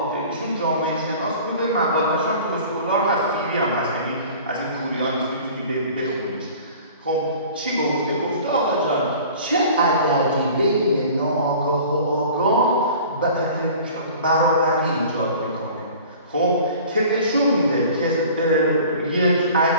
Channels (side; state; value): both; inverted; correlation -0.44